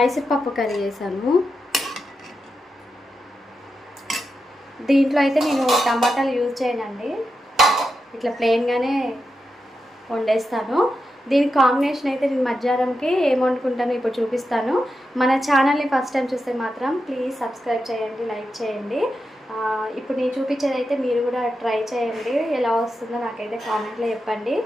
పప్పు కర్రీ చేశాను. దీంట్లో అయితే నేను టమాటాలు యూజ్ చేయనండి, ఇట్లా ప్లెయిన్గానే వండేస్తాను. దీనికి కాంబినేషన్ అయితే నేను మధ్యాహ్నంకి ఏం వండుకుంటానో ఇప్పుడు చూపిస్తాను. మన ఛానల్ని ఫస్ట్ టైం చూస్తే మాత్రం ప్లీజ్ సబ్స్క్రైబ్ చేయండి, లైక్ చేయండి. ఇప్పుడు నేను చూపించేది అయితే మీరు కూడా ట్రై చేయండి, ఎలా వస్తుందో నాకైతే కామెంట్లో చెప్పండి.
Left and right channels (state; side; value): normal; both; correlation 0.88